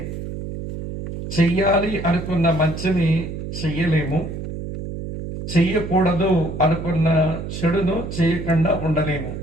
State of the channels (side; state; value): right; noise; hum, 7 dB below the sound